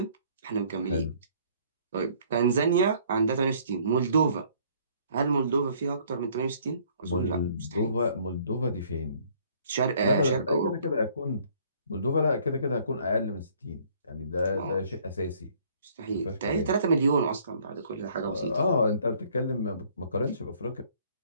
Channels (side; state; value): both; inverted; correlation -0.60